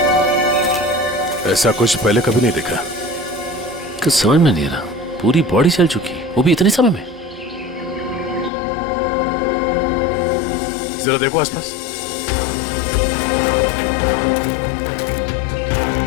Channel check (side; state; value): right; drops out; at 8.5 s